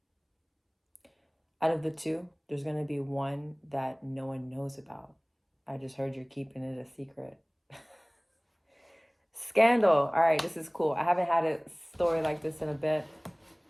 of the two, there's going to be one that no one knows about. I just heard you're keeping it a secret. Scandal. All right, this is cool. I haven't had a story like this in a bit.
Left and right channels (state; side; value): identical; both; correlation 1.00